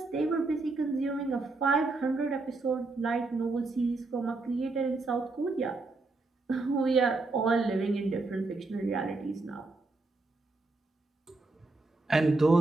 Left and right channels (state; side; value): quieter; left; 3.4 dB